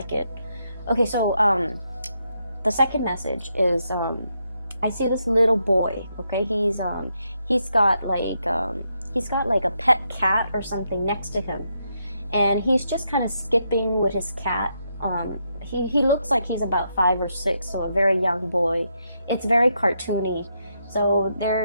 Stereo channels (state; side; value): inverted; both; correlation -0.80